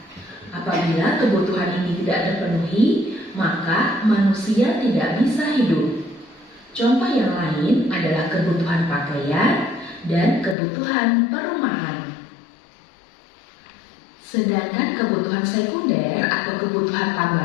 Apabila kebutuhan ini tidak terpenuhi, maka manusia tidak bisa hidup. Contoh yang lain adalah kebutuhan pakaian dan kebutuhan perumahan. Sedangkan kebutuhan sekunder atau kebutuhan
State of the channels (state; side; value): drops out; right; at 10.6 s